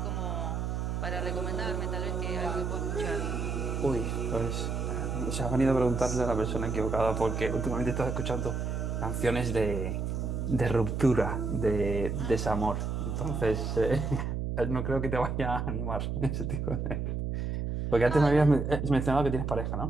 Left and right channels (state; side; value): noise; right; hum, 2 dB below the sound